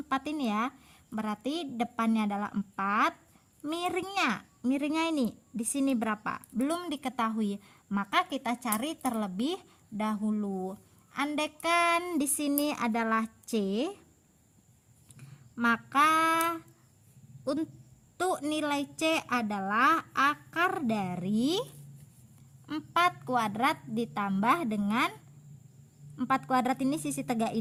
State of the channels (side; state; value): both; identical; correlation 1.00